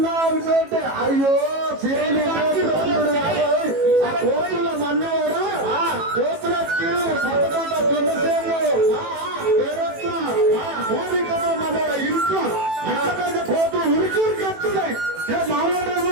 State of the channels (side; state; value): left; late; 18 ms